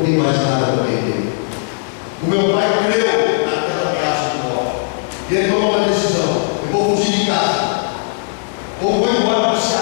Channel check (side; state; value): right; silent; 56 dB below the other